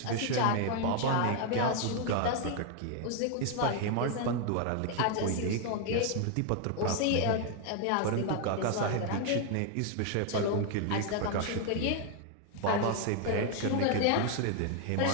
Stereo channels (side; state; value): both; different; correlation 0.01